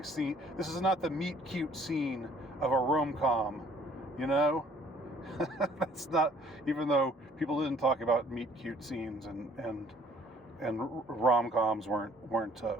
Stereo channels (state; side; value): normal; both; correlation 0.58